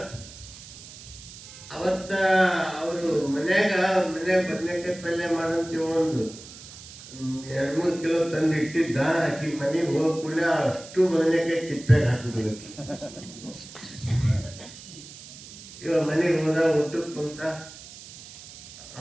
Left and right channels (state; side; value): noise; right; hiss, 16 dB below the sound